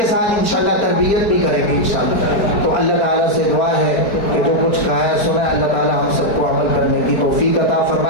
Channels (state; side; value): late; right; 4.7 ms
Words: ساتھ انشاءاللہ تربیت بھی کریں گے انشاءاللہ۔ تو اللہ تعالیٰ سے دعا ہے کہ جو کچھ کہا ہے سنا ہے، اللہ تعالیٰ ہم سب کو عمل کرنے کی توفیق عطا